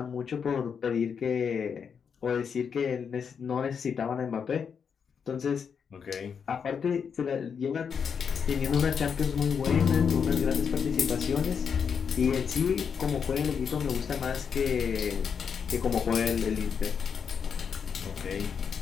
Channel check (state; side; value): quieter; right; 6.7 dB